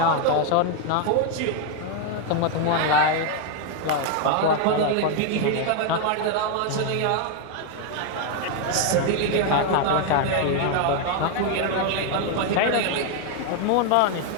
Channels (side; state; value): both; different; correlation 0.01